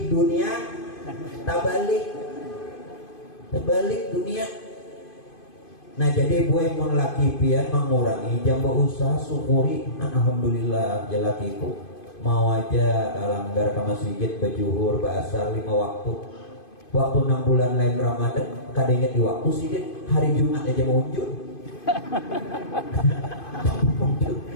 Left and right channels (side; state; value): right; late; 2.5 ms